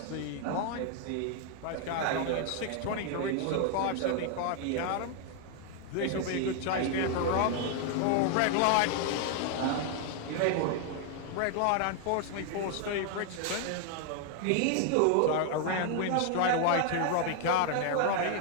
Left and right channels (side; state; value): both; different; correlation 0.00